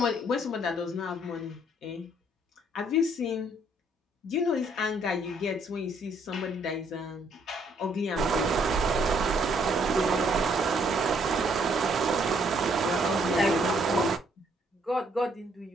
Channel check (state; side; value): normal; both; correlation 0.67